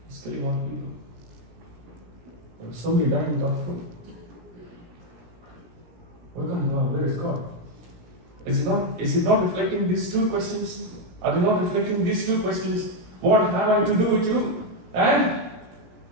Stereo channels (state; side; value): late; left; 17 ms